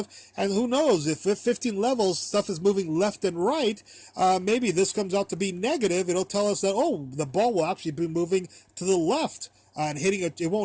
And who knows, if 15 levels, stuff is moving left and right, maybe this comes out to be negative. It'll tell us that, oh, the ball will actually be moving to the left. And it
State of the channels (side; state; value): both; identical; correlation 1.00